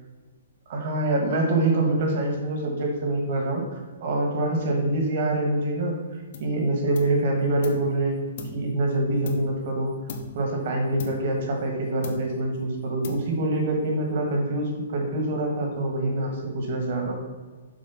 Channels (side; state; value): both; inverted; correlation -0.48